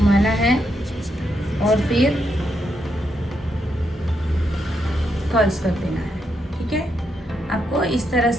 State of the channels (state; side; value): normal; both; correlation 0.80